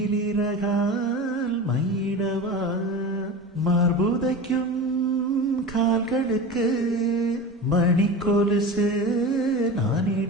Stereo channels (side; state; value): both; normal; correlation 0.30